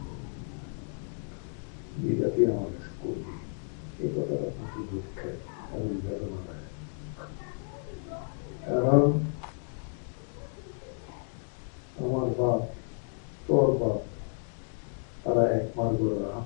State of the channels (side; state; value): right; silent; 57 dB below the other